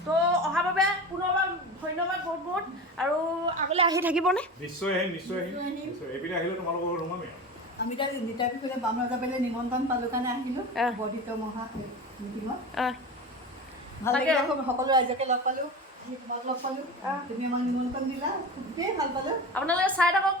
তো অহাৰ বাবে পুনৰবাৰ ধন্যবাদ বহুত বহুত আৰু আগলৈ আহি থাকিবনে নিশ্চয় আহিম এইপিনে আহিলে তোমালোকৰ ৰুমামে আমি এতিয়া নিতাই পিছতে বাম ৰজা পাৰিলে নিমন্ত্ৰণ পালোঁ কাৰণে আহিলোঁ বৰ্ধিত মহা মিটিঙত ভাল লাগিলে সকলো ৰাইজকে লগ পালোঁ তোমাক লগ পালোঁ তুমি আমাক নিমন্ত্ৰণ দিলা খুবেই ভাল পালোঁ আপোনালোকে চাই থাকক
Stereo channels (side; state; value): both; normal; correlation 0.29